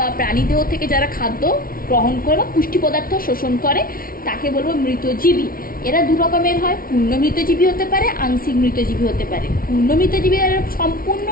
প্রাণীদেহ থেকে যারা খাদ্য গ্রহণ করে বা পুষ্টি পদার্থ শোষণ করে তাকে বলবো মৃতজীবী। এরা দু রকমের হয়, পূর্ণ মৃতজীবী হতে পারে, আংশিক মৃতজীবী হতে পারে। পূর্ণ মৃতজীবী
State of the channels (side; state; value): right; late; 0.43 ms